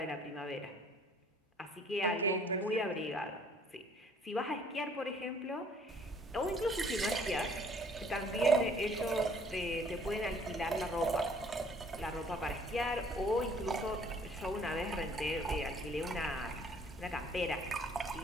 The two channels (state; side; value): normal; both; correlation 0.59